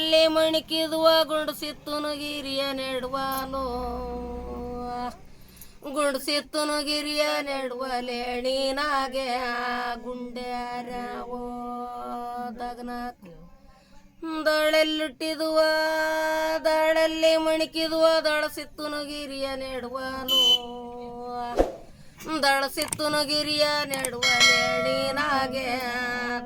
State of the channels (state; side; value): identical; both; correlation 1.00